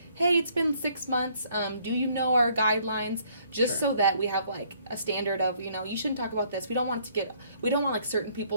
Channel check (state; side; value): inverted; both; correlation -0.64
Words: hey, it's been 6 months. Do you know our guidelines? Just Sure. so that we have like a standard of, you know, you shouldn't talk about this. We don't want like certain